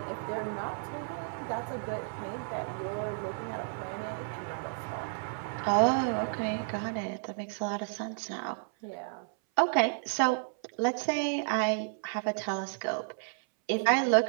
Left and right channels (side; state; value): left; silent; 56 dB below the other